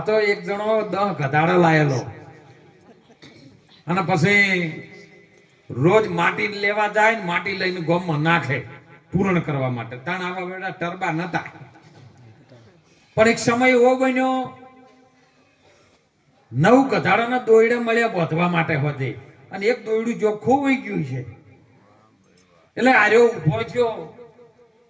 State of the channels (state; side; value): identical; both; correlation 1.00